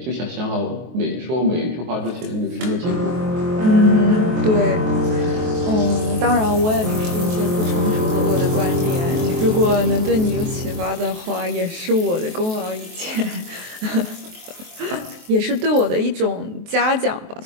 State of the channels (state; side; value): late; left; 23 ms